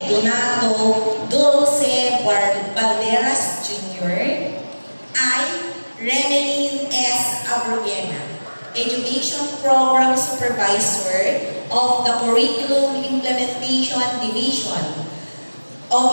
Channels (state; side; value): inverted; both; correlation -1.00